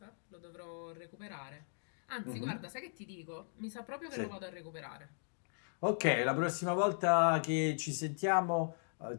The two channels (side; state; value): right; silent; digital silence